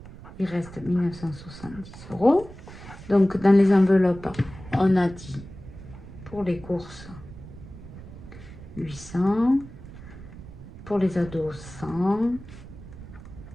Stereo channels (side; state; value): right; noise; rumble, 15 dB below the sound